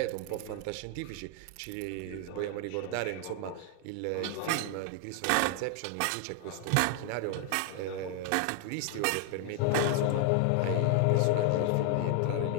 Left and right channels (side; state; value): both; different; correlation 0.00